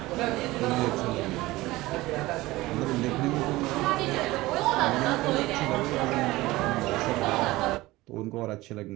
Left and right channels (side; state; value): left; quieter; 19.0 dB